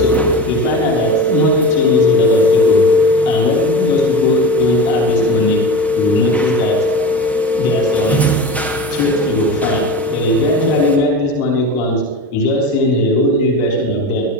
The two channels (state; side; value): normal; both; correlation 0.28